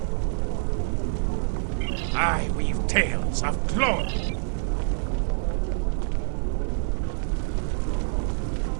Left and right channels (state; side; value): silent; left; digital silence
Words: I weave tales of glory.